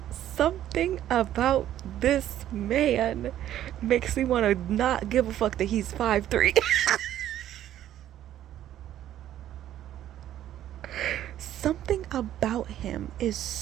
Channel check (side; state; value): left; quieter; 12.0 dB